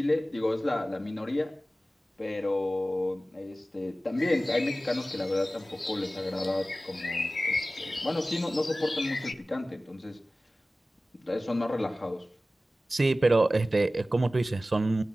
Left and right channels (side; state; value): both; normal; correlation 0.96